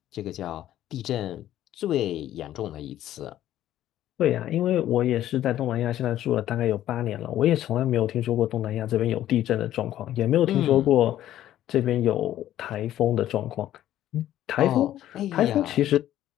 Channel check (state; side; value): quieter; right; 12.6 dB